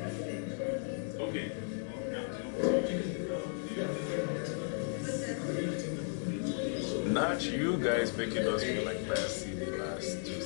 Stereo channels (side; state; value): right; silent; digital silence